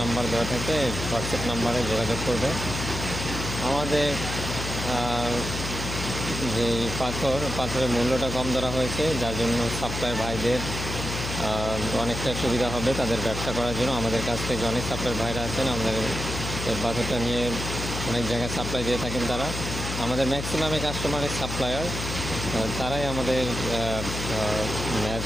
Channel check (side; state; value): left; noise; hum, 5 dB below the sound